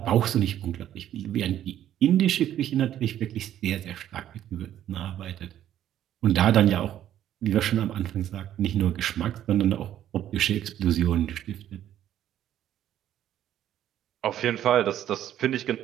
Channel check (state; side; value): quieter; left; 11.5 dB